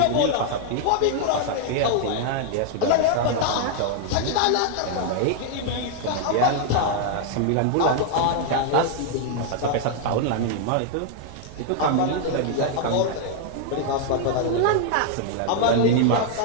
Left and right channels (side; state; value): both; different; correlation 0.00